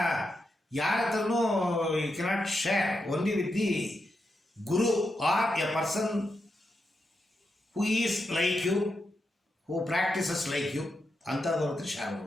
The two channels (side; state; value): both; normal; correlation 0.86